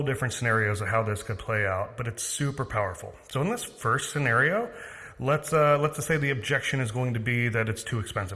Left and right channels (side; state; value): both; identical; correlation 1.00